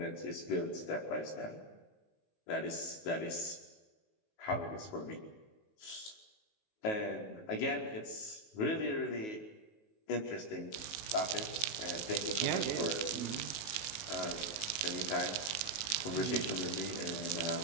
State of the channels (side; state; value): right; late; 19 ms